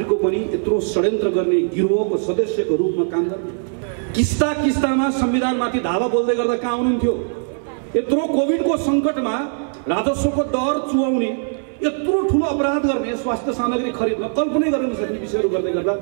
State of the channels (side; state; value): left; silent; 66 dB below the other